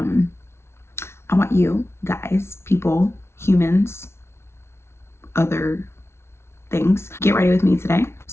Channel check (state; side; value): late; right; 0.12 ms